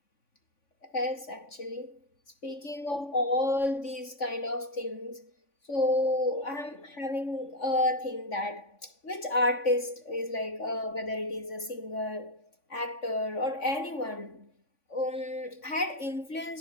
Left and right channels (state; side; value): late; right; 3.5 ms